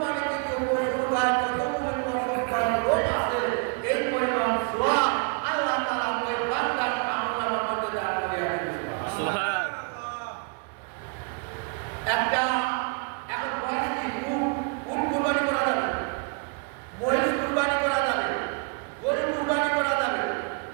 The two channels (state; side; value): quieter; left; 36.3 dB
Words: কিন্তু পশুর গায়ে কতগুলি পশুর লোক আছে, এই পরিমাণ সওয়াব আল্লাহ তাআলা ওই বান্দার আমলের মধ্যে দান করে দিয়েছেন। সুবহান। একটা এখন বয়স কি উট কুরবানি করা যাবে, মহিষ কুরবানি করা যাবে, গরু কুরবানি করা যাবে,